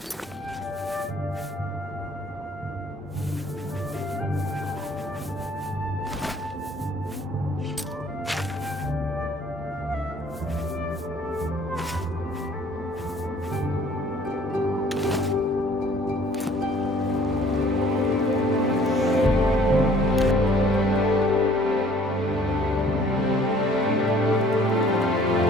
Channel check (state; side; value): normal; both; correlation 0.56